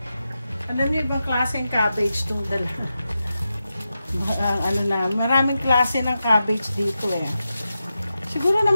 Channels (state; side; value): inverted; both; correlation -0.90